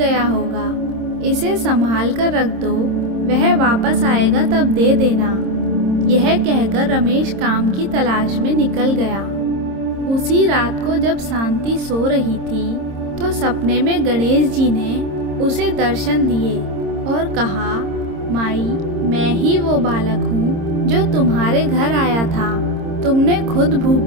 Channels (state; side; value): late; left; 26 ms